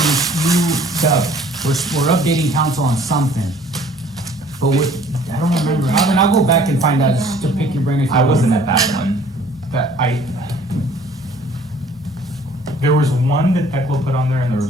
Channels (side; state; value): both; normal; correlation 0.55